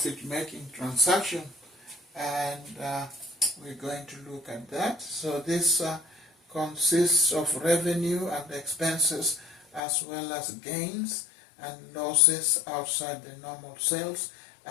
transaction, and we're going to look at that. So this consists of revenue and expenses, as well as gains and losses outside the normal sales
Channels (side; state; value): right; drops out; at 9.8 s